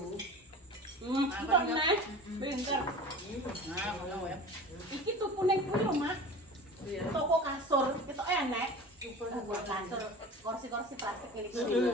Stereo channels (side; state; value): both; normal; correlation 0.37